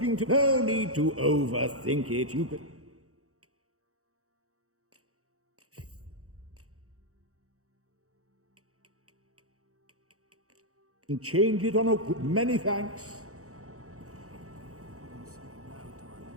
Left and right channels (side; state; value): left; late; 0.65 ms